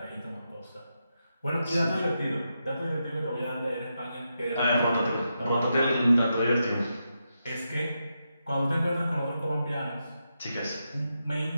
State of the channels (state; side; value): inverted; both; correlation -0.86